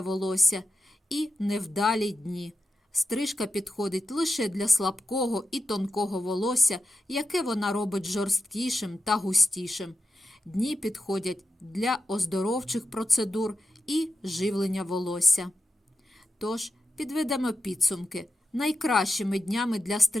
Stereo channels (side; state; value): both; normal; correlation 0.90